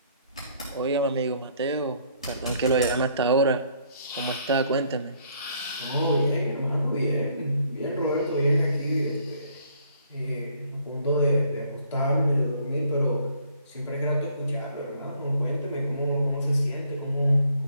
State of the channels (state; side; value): inverted; both; correlation -0.64